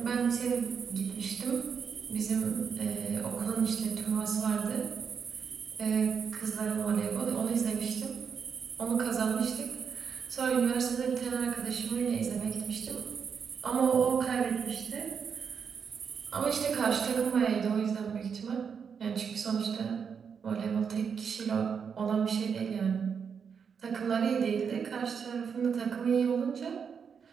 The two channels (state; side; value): quieter; left; 6.6 dB